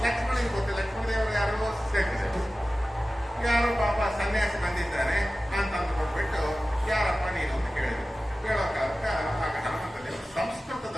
ಲಕ್ಷ್ಮಣಿಗೆ ಗೊತ್ತಿಲ್ಲ. ಲಕ್ಷ್ಮಣ ದೇವರು ಯಾರೋ ಸೇರಿದೆ, ಯಾರೋ ಪಾಪ ಸನ್ಯಾಸಿ ಬಂದಿದ್ದಾನೆ ಅಂತ ಅಂದ್ಕೊಂಡ್ಬಿಟ್ಟು ಯಾರಪ್ಪ ನೀನು ಅಂತ ಕೇಳಿದ್ರು. ಕೇಳೋ ಕಾಲಕ್ಕೆ ಆಗ ಹನುಮಂತ ದೇವರು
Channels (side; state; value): both; normal; correlation 0.96